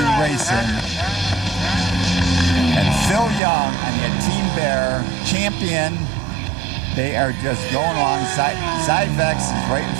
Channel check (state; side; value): drops out; left; at 3.4 s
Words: Racing. And Phil Young on the Team Bear champion. They are just going along. Zyvex is right in